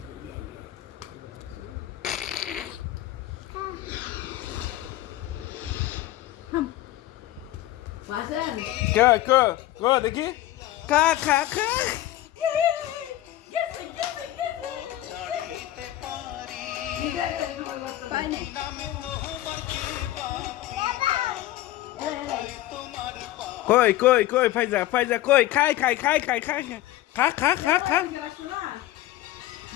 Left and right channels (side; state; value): right; quieter; 14.8 dB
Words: কে কে দেখি খা খা খা কই কই কই ফাইজা ফাইজা কই খাই খাই খাই খাই খাই খা খা খা খা